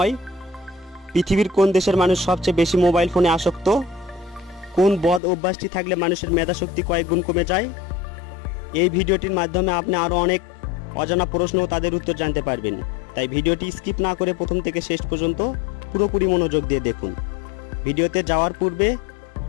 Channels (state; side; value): drops out; right; at 5.2 s